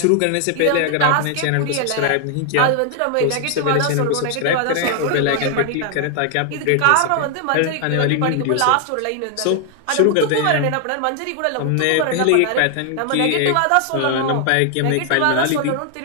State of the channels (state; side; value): different; both; correlation 0.00